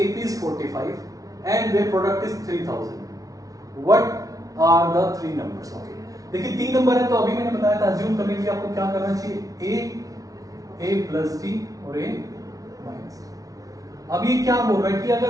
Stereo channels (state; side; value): late; left; 0.18 ms